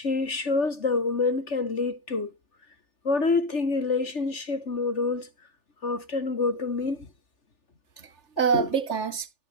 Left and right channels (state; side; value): late; right; 3.4 ms